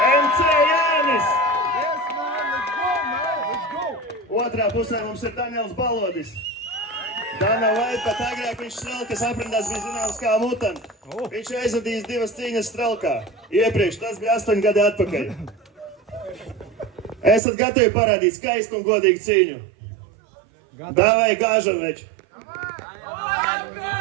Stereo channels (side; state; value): left; drops out; at 17.4 s